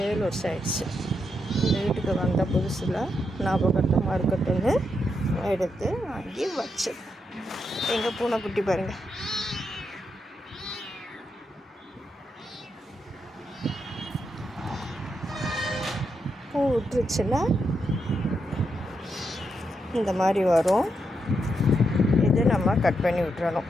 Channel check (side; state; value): both; normal; correlation 0.82